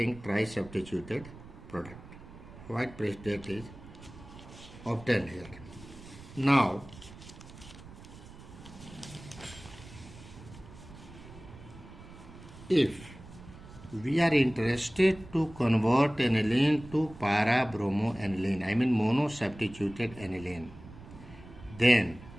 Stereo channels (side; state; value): right; noise; rumble, 17 dB below the sound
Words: tri-substituted product. White precipitate is obtained here. Now if we are interested to convert aniline to para-bromoaniline, I mean mono-substituted aniline, then